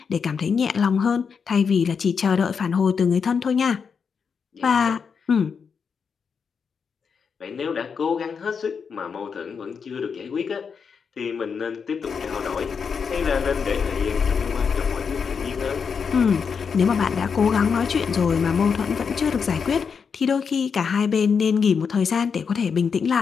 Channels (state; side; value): quieter; right; 6.1 dB